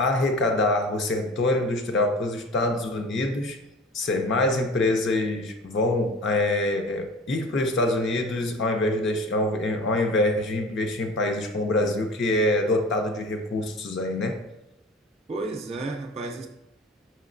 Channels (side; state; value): both; normal; correlation 0.39